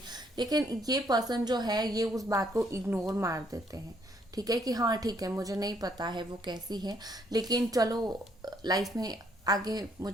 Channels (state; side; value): normal; both; correlation 0.69